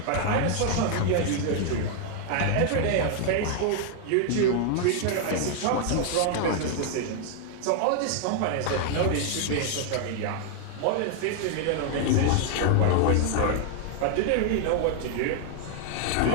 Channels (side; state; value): both; different; correlation 0.00